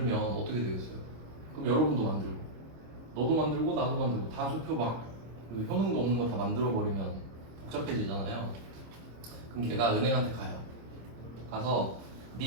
어떻게 되겠어요? 그럼 여러분도 만들고 너도 만들고 나도 만들고 다 수표 막그 효능도 없는 거 다 만들어 버리면 복잡해지잖아요. 그럼 걔가 은행한테 가요. 가서 네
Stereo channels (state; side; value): late; left; 26 ms